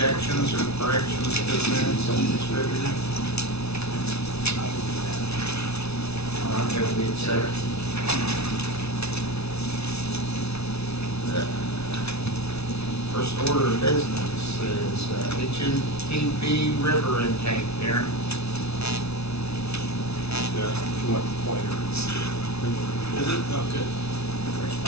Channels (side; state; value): right; late; 0.80 ms